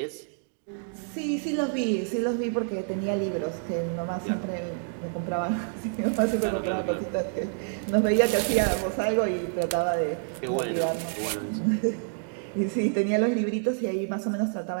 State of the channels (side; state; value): left; silent; digital silence